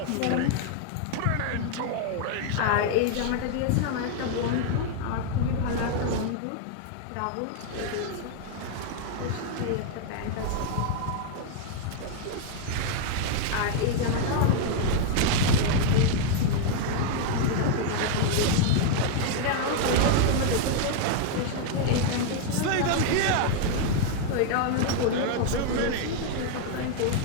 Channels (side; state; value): both; different; correlation 0.00